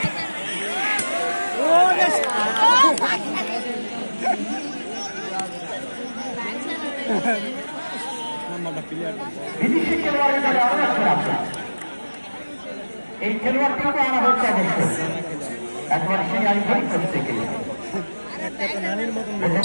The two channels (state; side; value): inverted; both; correlation -1.00